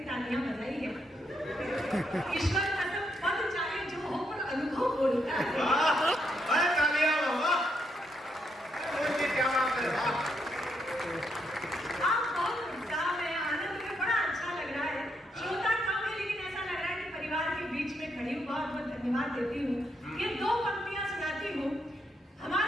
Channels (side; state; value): both; normal; correlation 0.78